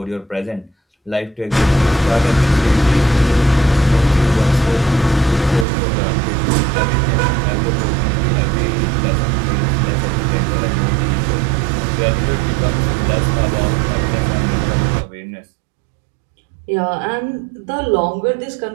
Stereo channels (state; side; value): drops out; left; at 5.7 s